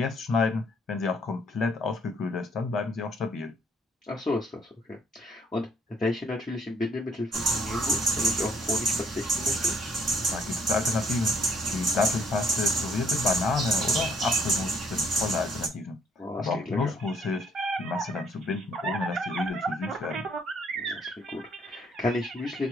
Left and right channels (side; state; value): both; normal; correlation 0.65